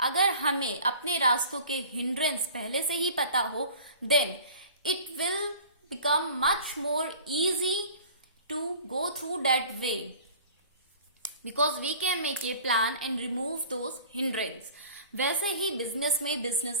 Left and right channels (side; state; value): both; inverted; correlation -0.45